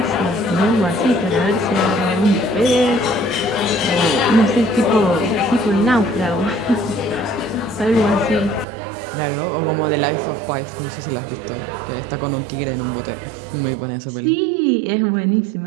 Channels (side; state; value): left; drops out; at 8.7 s